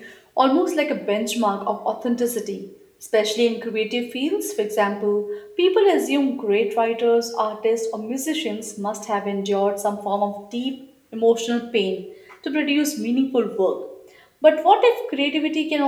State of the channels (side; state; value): both; identical; correlation 1.00